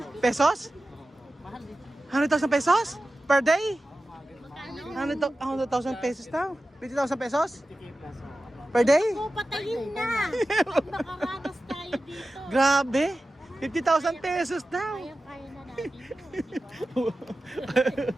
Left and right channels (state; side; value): normal; both; correlation 0.94